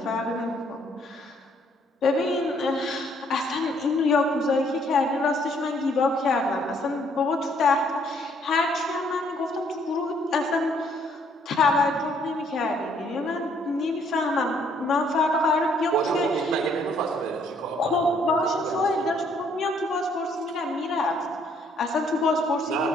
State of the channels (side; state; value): both; normal; correlation 0.66